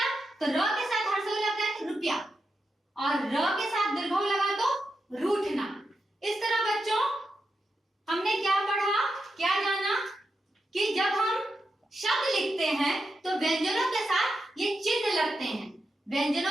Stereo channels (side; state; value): both; normal; correlation 0.87